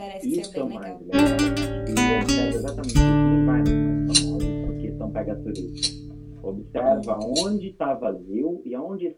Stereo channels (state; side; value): identical; both; correlation 1.00